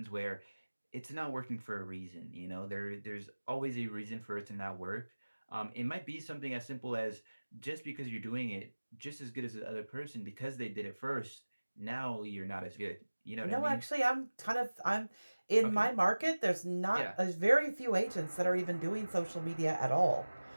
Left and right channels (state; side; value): inverted; both; correlation -1.00